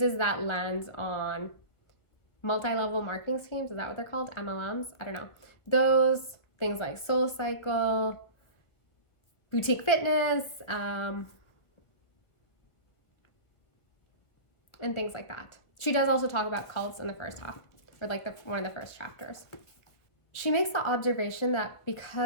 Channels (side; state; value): right; late; 1.6 ms